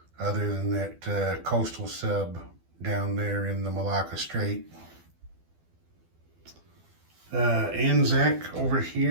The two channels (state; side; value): late; left; 12 ms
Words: other than that coastal sub down there in the Malacca Strait. Anzac over